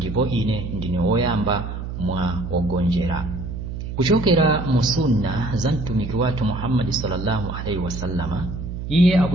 ine ndine woyamba mwa wogonjera. Kuchokera mu sunna za mtumiki wathu Muhammad sallallahu alaihi wasallama, iye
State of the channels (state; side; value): noise; right; hum, 7 dB below the sound